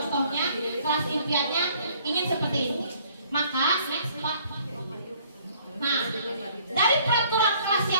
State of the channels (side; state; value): both; inverted; correlation -0.59